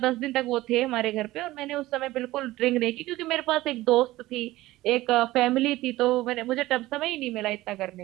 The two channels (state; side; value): quieter; left; 17.4 dB